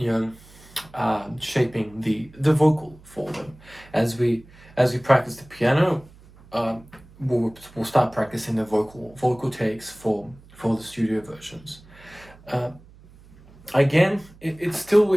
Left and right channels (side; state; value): right; noise; hum, 24 dB below the sound